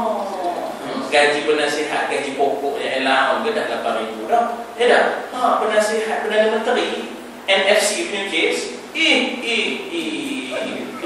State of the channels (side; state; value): both; identical; correlation 1.00